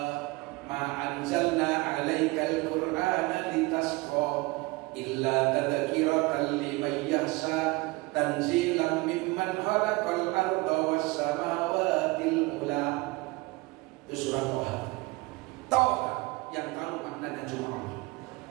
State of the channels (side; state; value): left; quieter; 23.6 dB